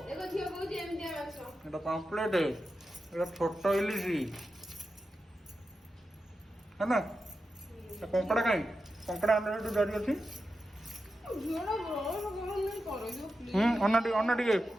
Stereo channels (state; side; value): normal; both; correlation 0.90